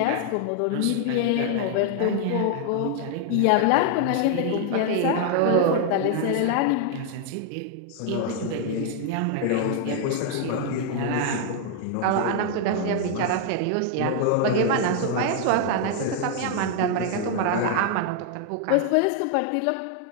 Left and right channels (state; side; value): different; both; correlation 0.00